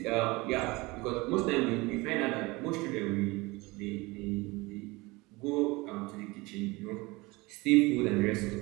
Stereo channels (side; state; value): left; quieter; 23.3 dB